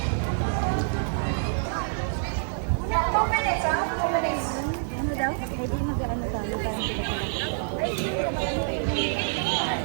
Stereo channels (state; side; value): silent; left; digital silence